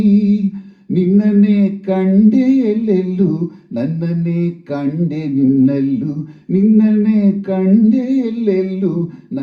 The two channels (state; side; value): identical; both; correlation 1.00